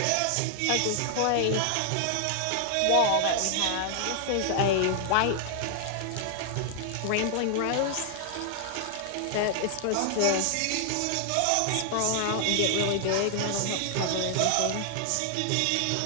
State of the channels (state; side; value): different; both; correlation 0.00